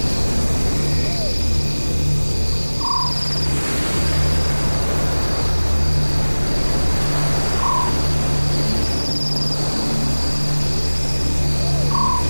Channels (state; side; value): inverted; both; correlation -1.00